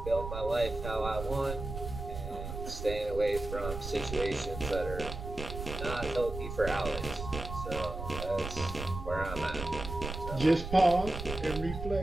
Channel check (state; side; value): noise; right; rumble, 7 dB below the sound